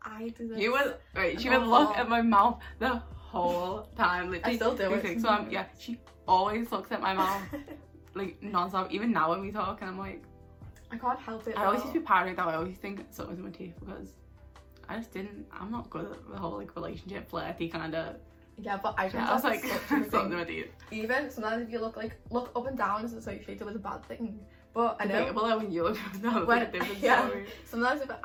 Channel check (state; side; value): identical; both; correlation 1.00